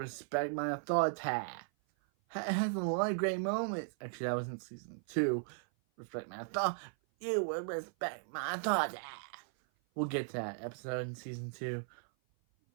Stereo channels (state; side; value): silent; left; 53 dB below the other